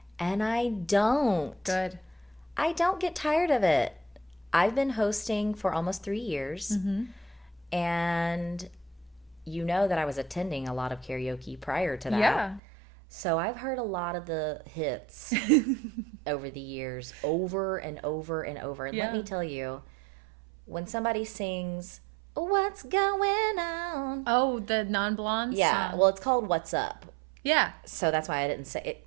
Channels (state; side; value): drops out; left; at 12.6 s